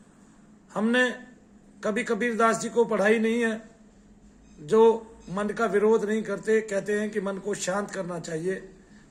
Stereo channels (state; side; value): identical; both; correlation 1.00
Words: हमने कभी कबीरदास जी को पढ़ाई नहीं है, जो मन का विरोध नहीं करते, कहते हैं कि मन को शांत करना चाहिए,